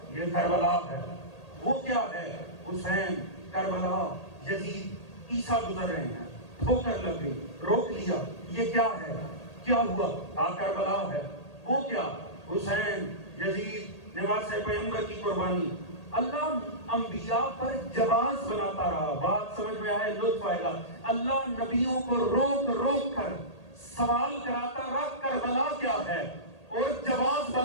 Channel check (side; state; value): right; late; 1.8 ms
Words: یہ کربلا ہے۔ وہ کیا ہے؟ حسین، کربلا، یزید، عیسیٰ گزر رہے ہیں، ٹھوکر لگ گئی، روک لیا، یہ کیا ہے؟ کیا ہوا؟ کربلا ہے۔ وہ کیا؟ حسین، یزید، نواسۂ پیغمبر کی قربانی۔ اللہ انبیاء پر جواز بناتا رہا۔ بات سمجھ میں آئے، لطف آئے گا۔ اللہ نبیوں کو روک روک کر سوال کراتا رہا کربلا کیا ہے، اور جواز